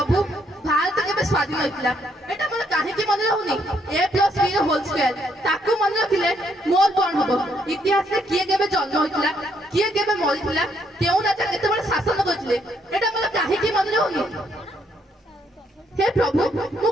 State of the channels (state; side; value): normal; both; correlation 0.72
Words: भारत केबे स्वाधीन होइतिला एटा मन काहे कि मन रहउनी a+b होल स्क्वायर ताकू मन रखिले मोर कोन हबो इतिहास रे किए केबे जन्म होइतिला किए केबे मरितिला केउ राजा केते बड़ शासन करथिले एटा मन काहे कि मन रहउनी। हे प्रभु मु